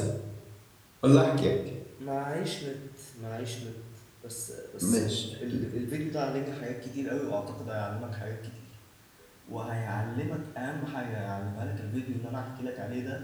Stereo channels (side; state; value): both; identical; correlation 1.00